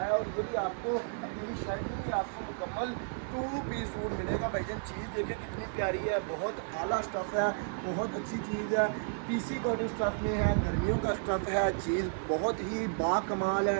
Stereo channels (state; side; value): silent; left; 56 dB below the other